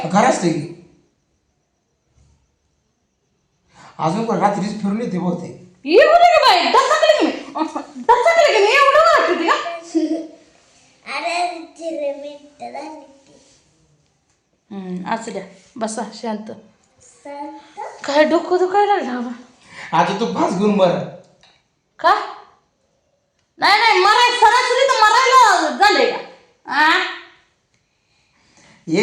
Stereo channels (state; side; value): identical; both; correlation 1.00